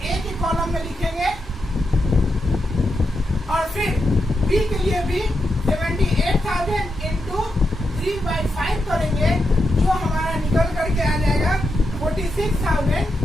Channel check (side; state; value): both; normal; correlation 0.86